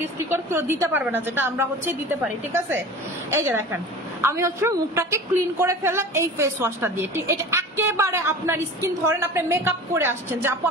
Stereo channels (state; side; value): normal; both; correlation 0.37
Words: স্টিকার কেউ দিতে পারবে না, যেটা আমরা হচ্ছে দিতে পারি, ঠিক আছে। এই যে দেখেন আমি হচ্ছে মুখটাকে ক্লিন করে ফেললাম এই ফেস ওয়াশটা দিয়ে, ঠিক, এটা একেবারে আপনার স্কিন, ধরেন আপনি মেকআপ করে আসছেন, যে আপু